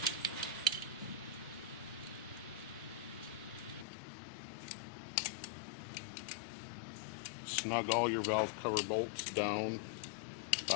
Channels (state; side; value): drops out; right; at 3.9 s